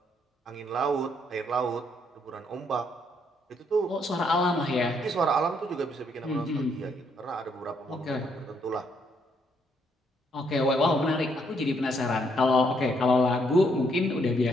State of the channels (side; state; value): both; normal; correlation 0.72